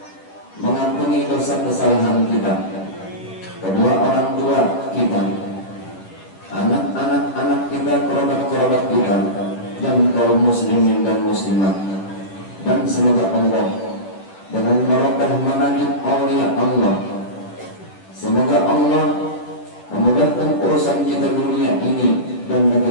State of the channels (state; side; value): late; right; 10 ms